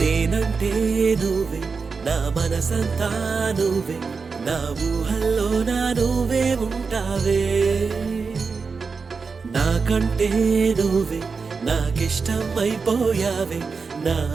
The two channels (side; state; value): left; quieter; 4.9 dB